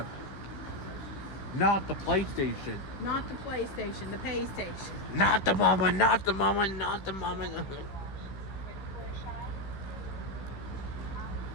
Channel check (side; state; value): right; late; 15 ms